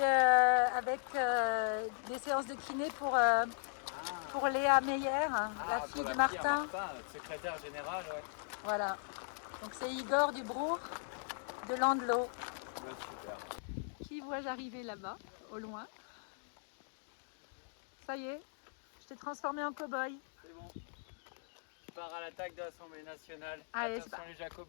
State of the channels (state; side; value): silent; right; digital silence